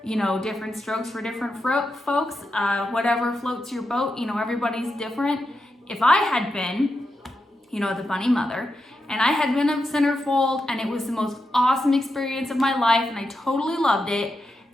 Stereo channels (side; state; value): both; normal; correlation 0.87